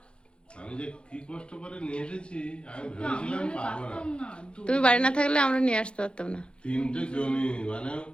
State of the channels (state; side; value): late; right; 0.055 ms